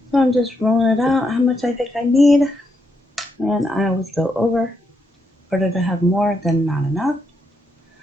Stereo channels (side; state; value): both; normal; correlation 0.80